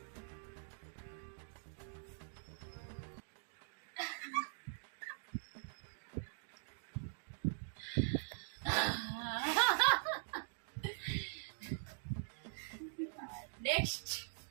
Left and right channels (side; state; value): left; silent; digital silence